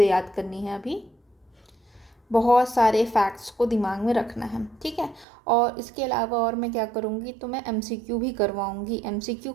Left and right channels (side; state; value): left; drops out; at 5.2 s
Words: याद करनी है, अभी बहुत सारे फैक्ट्स को दिमाग में रखना है। ठीक है, और इसके अलावा और मैं क्या करूँगी, तो मैं एमसीक्यू भी करवाऊँगी। एमसीक्यू